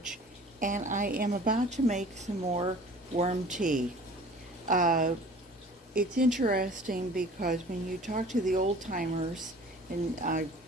and I am about to make some more worm tea. Uh, it's interesting because when you talk to the old timers, and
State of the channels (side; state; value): both; normal; correlation 0.46